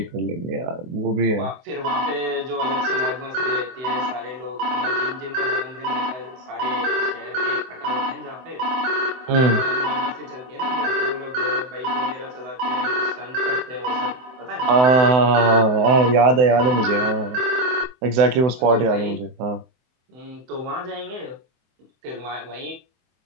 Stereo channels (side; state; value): left; late; 24 ms